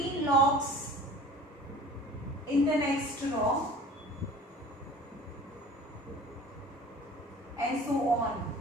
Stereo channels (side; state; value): both; normal; correlation 0.44